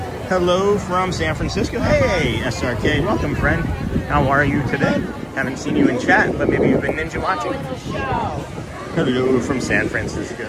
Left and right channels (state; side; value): identical; both; correlation 1.00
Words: Hello from San Francisco. Hey, SRK. Welcome, friend. How are you today? Haven't seen you in chat, but maybe you've been ninja watching. Hello from San Francisco.